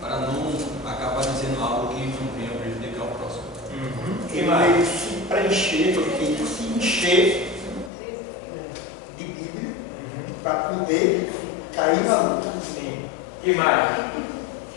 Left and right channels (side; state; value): right; drops out; at 7.9 s